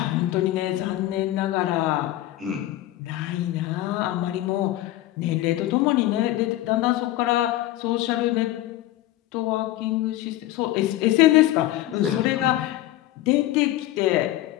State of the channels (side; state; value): right; quieter; 15.2 dB